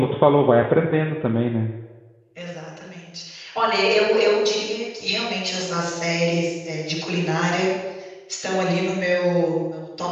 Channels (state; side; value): identical; both; correlation 1.00